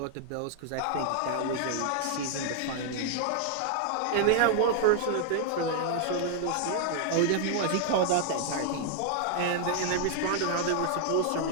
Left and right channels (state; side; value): different; both; correlation 0.00